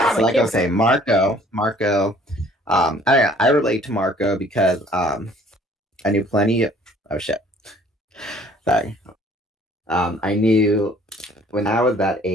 so like I was saying, Marco, I relate to Marco because I knew plenty of... Oh, shit. Sorry. I knew when I was that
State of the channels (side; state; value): both; normal; correlation 0.56